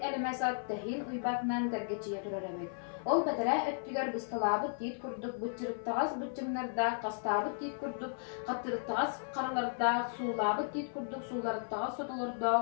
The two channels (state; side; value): silent; right; 54 dB below the other